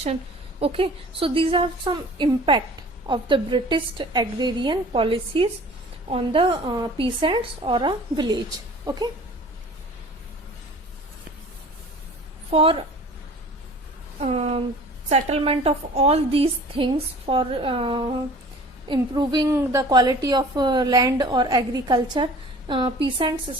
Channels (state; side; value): normal; both; correlation 0.46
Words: Okay, so these are some impact of the British agrarian policies on the peasants or a village. Okay, for settlement of all these things, for improving the quality of land or agriculture, peasants